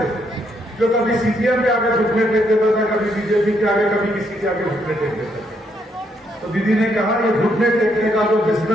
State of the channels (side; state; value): both; normal; correlation 0.74